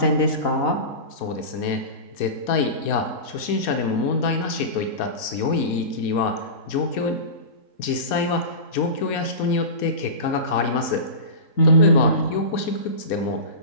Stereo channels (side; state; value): right; late; 4.2 ms